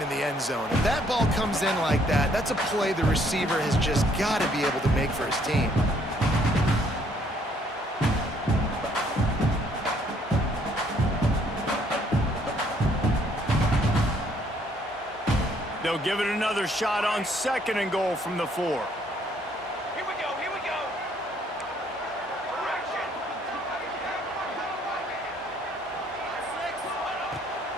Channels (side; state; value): both; normal; correlation 0.65